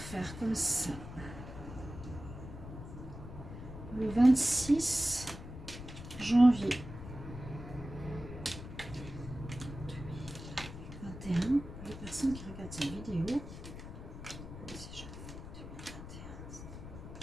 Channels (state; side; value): noise; left; rumble, 11 dB below the sound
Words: comme ça. Le 26 janvier 2021, les personnes qui regardent cette vidéo,